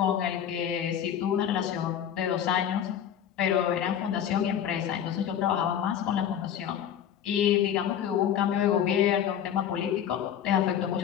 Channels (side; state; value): right; quieter; 9.6 dB